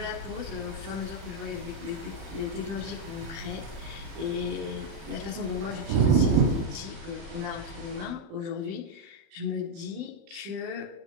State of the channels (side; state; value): left; late; 36 ms